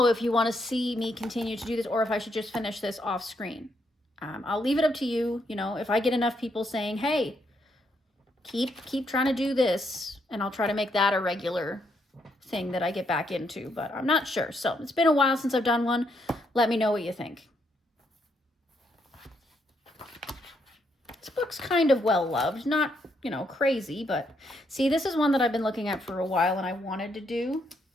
if you want to see me continue to do this or if I should just finish this off screen. I'll leave it up to you. You know, if I get enough people saying, hey, keep trying to do this, and I'll try to make that a regular thing that I get back into, but I'm not sure. So it's been a while since I've done one. Let me know what you think. This book's kind of well loved, not, you know, crazy, but see, this is one that I've been looking at for a while and I wanted to do.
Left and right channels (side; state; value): both; normal; correlation 0.76